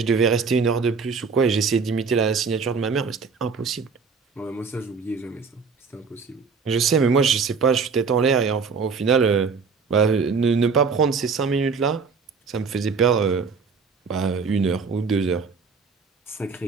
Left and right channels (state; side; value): quieter; left; 5.2 dB